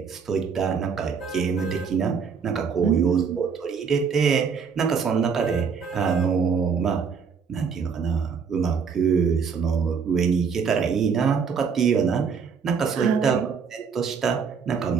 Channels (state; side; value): quieter; left; 6.1 dB